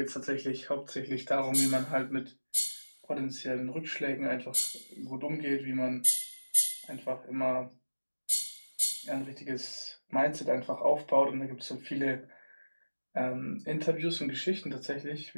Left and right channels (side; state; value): both; inverted; correlation -1.00